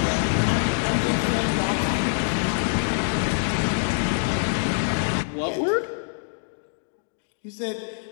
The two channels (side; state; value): right; silent; digital silence